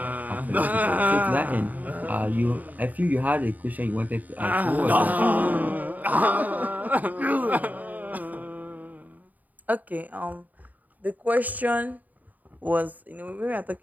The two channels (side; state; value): left; late; 0.079 ms